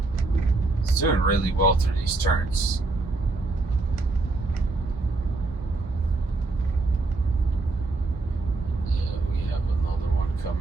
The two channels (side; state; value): left; quieter; 3.4 dB